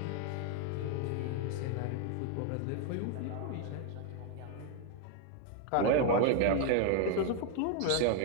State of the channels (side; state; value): both; different; correlation 0.01